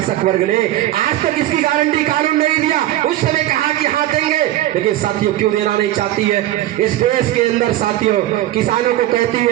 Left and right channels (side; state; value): left; quieter; 14.3 dB